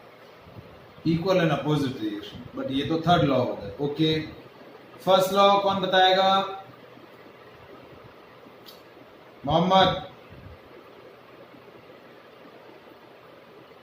Equal and opposite reaction, but ये तो थर्ड लॉ हो गया। ओके, फर्स्ट लॉ कौन बताएगा? Mohammad.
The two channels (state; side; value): identical; both; correlation 1.00